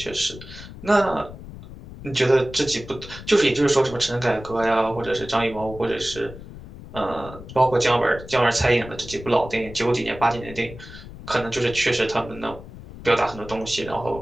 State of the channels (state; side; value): noise; left; rumble, 15 dB below the sound